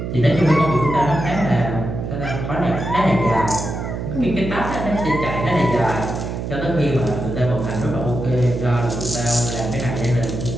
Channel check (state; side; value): noise; right; hum, 5 dB below the sound